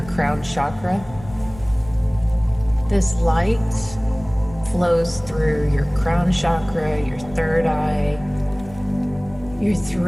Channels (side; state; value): left; noise; rumble, 18 dB below the sound